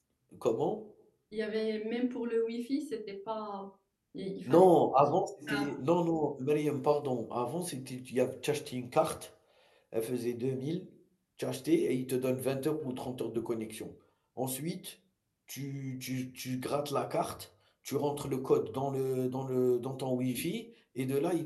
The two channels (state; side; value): identical; both; correlation 1.00